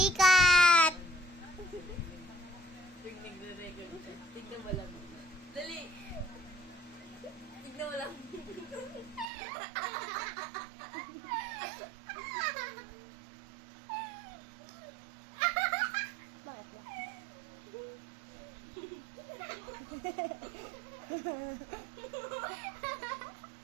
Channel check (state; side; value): drops out; left; at 9.2 s